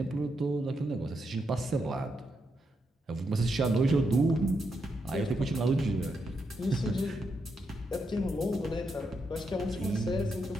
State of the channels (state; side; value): normal; both; correlation 0.82